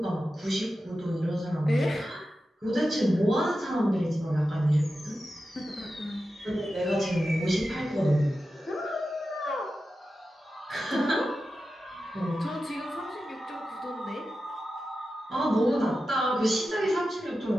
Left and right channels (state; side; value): normal; both; correlation 0.92